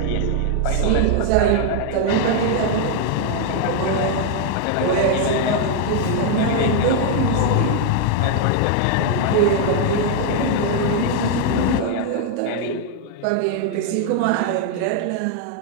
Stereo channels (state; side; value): different; both; correlation 0.00